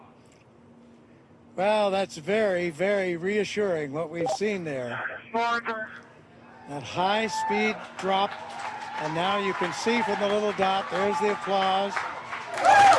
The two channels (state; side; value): identical; both; correlation 1.00